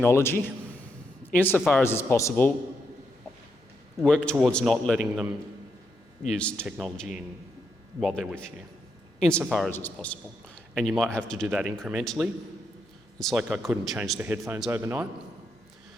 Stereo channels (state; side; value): normal; both; correlation 0.80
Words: insofar as it's possible, work towards not letting them use technology while they're with you, insofar as it's possible. And you might have to do that incrementally. It's like I couldn't change the headphones overnight.